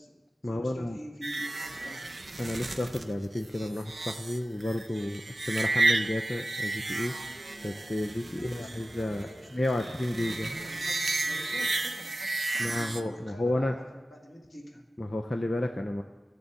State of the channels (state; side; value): normal; both; correlation 0.95